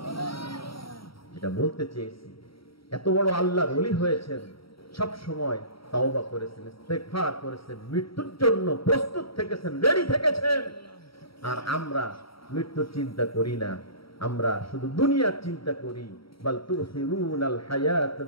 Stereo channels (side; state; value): right; late; 0.75 ms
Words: যেটা বলতে চেয়েছি, এত বড় আল্লাহর ওলি হয়েছেন, সব সময় তাওবা করেছেন, ইস্তেগফার করেছেন, মৃত্যুর জন্য প্রস্তুত থেকেছেন, রেডি থেকেছেন। আর আমরা মৃত্যুর চিন্তা করি না, আমরা শুধু দুনিয়ার চিন্তা করি। বাল তুসিরুনাল